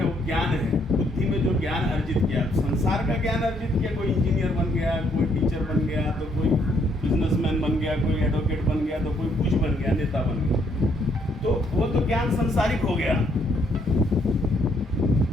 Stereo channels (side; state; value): both; normal; correlation 0.70